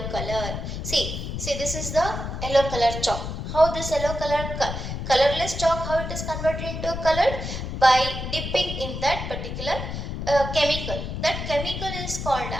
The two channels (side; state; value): left; noise; rumble, 5 dB below the sound